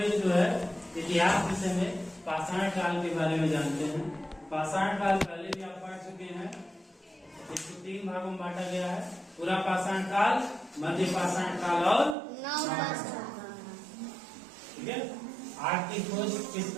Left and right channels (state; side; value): drops out; left; at 12.2 s